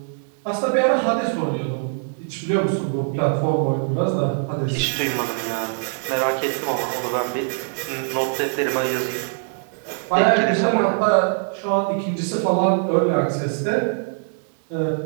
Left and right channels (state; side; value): silent; left; 64 dB below the other